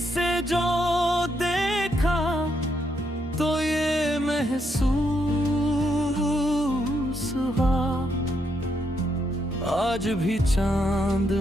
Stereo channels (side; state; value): both; normal; correlation 0.78